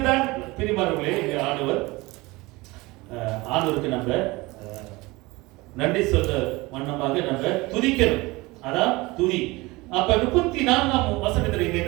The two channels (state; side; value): quieter; left; 22.3 dB